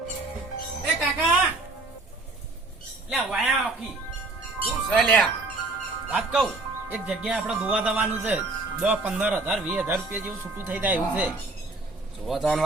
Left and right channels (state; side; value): quieter; left; 3.1 dB